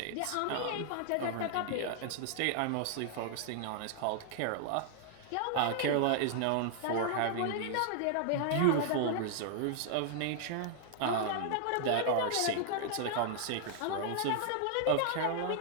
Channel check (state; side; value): different; both; correlation -0.01